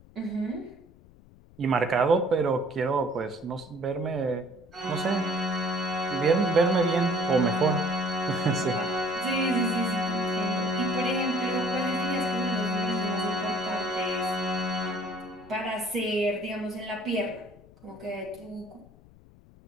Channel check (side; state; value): left; noise; rumble, 24 dB below the sound